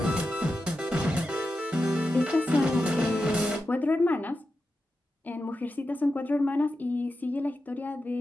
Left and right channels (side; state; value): both; normal; correlation 0.90